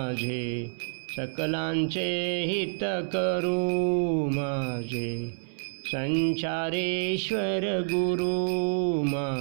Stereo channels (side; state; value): left; silent; 59 dB below the other